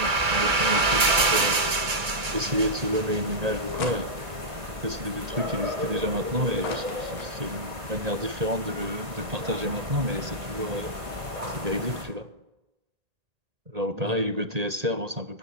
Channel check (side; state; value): left; late; 2.3 ms